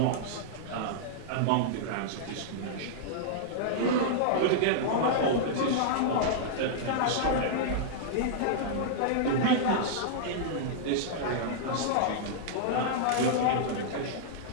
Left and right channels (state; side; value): different; both; correlation -0.02